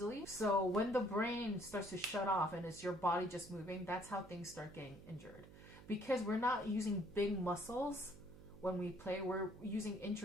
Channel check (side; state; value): right; noise; hum, 18 dB below the sound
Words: So when the brain starts to shut off and it's your body just moving, that's how things start getting injured. Because we're not using big muscles when we play, we're using